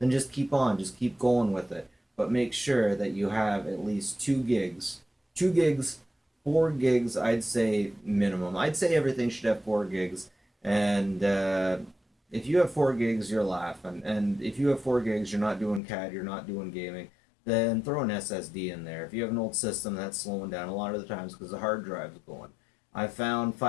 just keep on, just keep going with it. But make sure that you have at least 2 gigs. 2 gigs, 4 gigs, I'd say minimum. I'd say everything should have 4 gigs. And if you have 4 gigs, you're laughing. And if you have 4 gigs, you're not doing CAD, you're not doing gaming, then throw an SSD in there. If you have an old system that's slowing down a lot of the times because the hard drive's going. I found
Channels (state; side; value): drops out; right; at 15.8 s